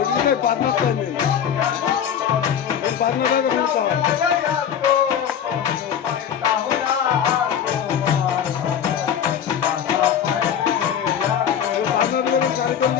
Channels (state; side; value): quieter; right; 8.7 dB